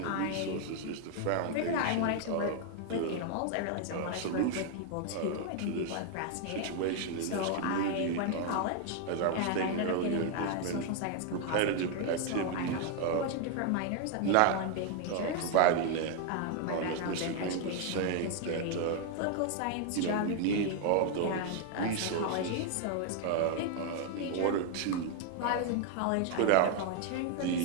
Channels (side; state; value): both; different; correlation 0.00